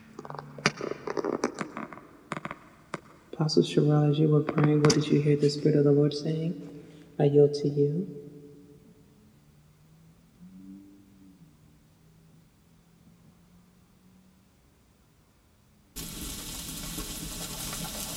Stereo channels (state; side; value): identical; both; correlation 1.00